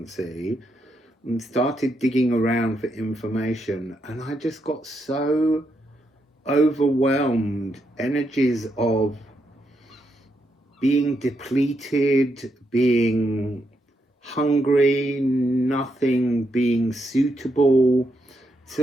and started digging around for information, and I just got so overwhelmed. Energies of being depleted, being hungry, nothing being suitable. It's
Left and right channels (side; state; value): both; normal; correlation 0.80